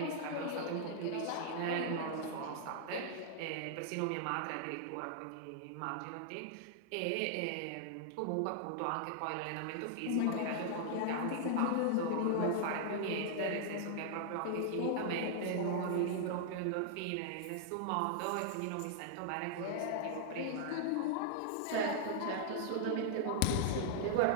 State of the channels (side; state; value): both; different; correlation -0.01